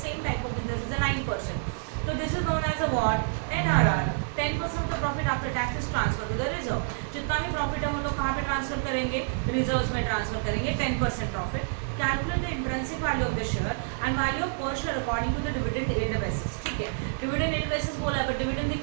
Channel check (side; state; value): left; silent; digital silence